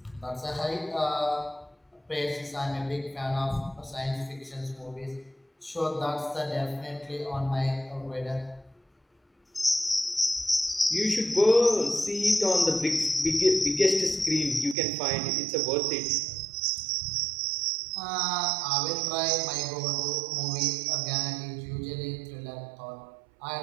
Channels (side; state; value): left; drops out; at 14.8 s